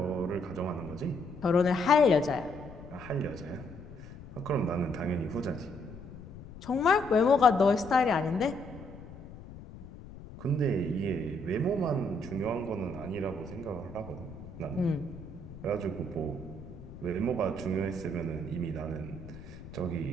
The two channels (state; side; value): noise; left; rumble, 15 dB below the sound